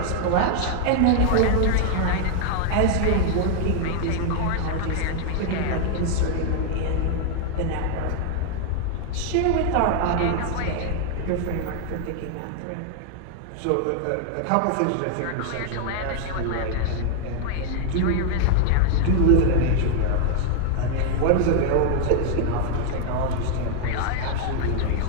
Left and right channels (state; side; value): different; both; correlation 0.00